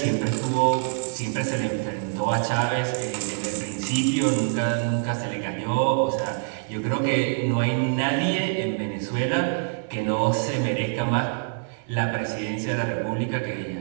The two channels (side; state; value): left; silent; digital silence